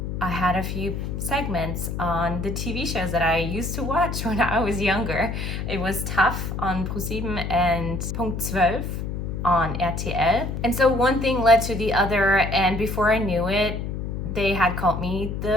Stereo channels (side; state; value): left; noise; hum, 4 dB below the sound